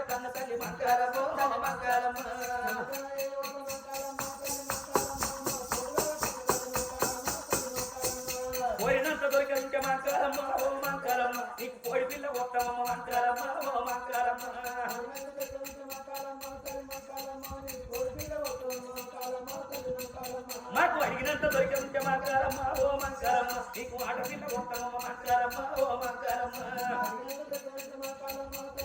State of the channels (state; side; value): identical; both; correlation 1.00